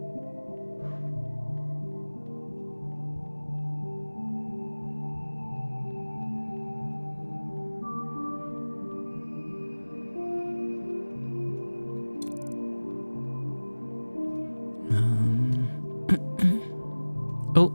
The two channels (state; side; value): inverted; both; correlation -1.00